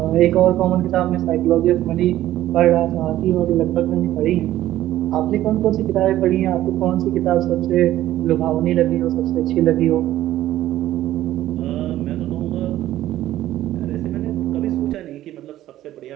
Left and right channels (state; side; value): quieter; left; 13.8 dB